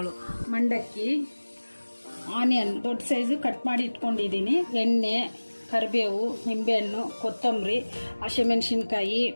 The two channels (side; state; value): both; inverted; correlation -1.00